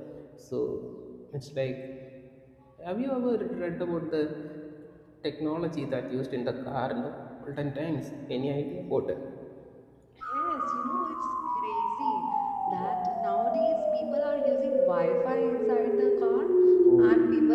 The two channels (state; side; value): identical; both; correlation 1.00